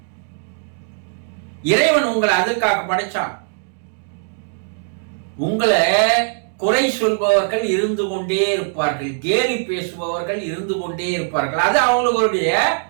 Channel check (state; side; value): silent; left; digital silence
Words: இறைவன் உங்களை அதுக்காக படைச்சான். உங்களை குறை சொல்பவர்கள் இருந்து கொண்டே இருப்பார்கள், கேலி பேசுபவர்கள் இருந்து கொண்டே இருப்பார்கள். அது அவங்களுடைய